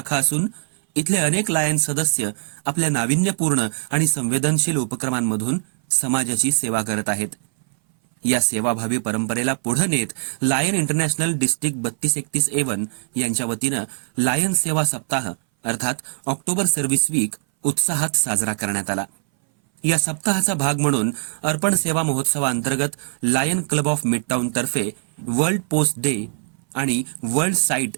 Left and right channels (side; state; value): left; silent; 60 dB below the other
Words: असून इथले अनेक लायन सदस्य आपल्या नाविन्यपूर्ण आणि संवेदनशील उपक्रमांमधून समाजाची सेवा करत आहेत। या सेवाभावी परंपरेला पुढे नेत लायन इंटरनॅशनल डिस्ट्रिक्ट 32-31 यांच्या वतीनं लायन सेवा सप्ताह अर्थात ऑक्टोबर सर्व्हिस वीक उत्साहात साजरा करण्यात आला। या सप्ताहाचा भाग म्हणून अर्पण सेवा महोत्सवाअंतर्गत लायन क्लब ऑफ मिडटाउन तर्फे वर्ल्ड पोस्ट डे आणि वर्ल्ड साईट